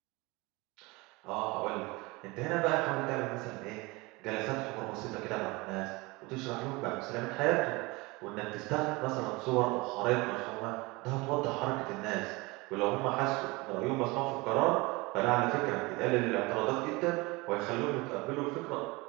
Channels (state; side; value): quieter; left; 24.1 dB